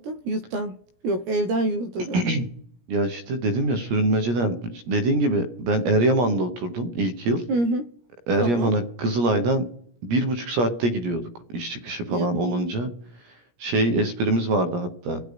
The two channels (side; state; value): left; late; 17 ms